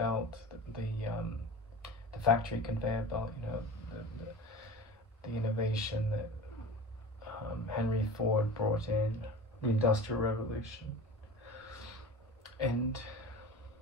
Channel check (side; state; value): both; normal; correlation 0.35